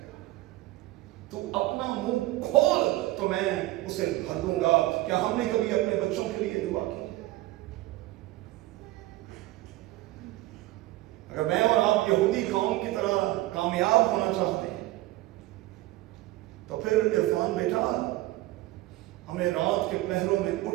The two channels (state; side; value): quieter; left; 17.7 dB